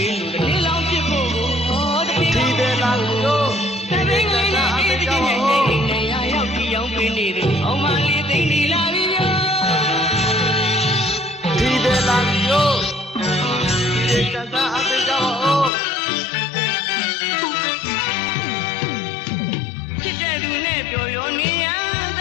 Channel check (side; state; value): right; drops out; at 15.7 s